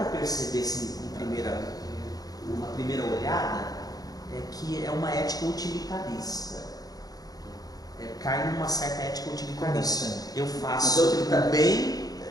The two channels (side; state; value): right; late; 0.18 ms